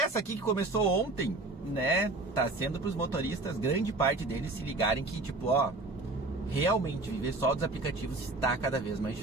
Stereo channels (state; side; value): quieter; left; 3.1 dB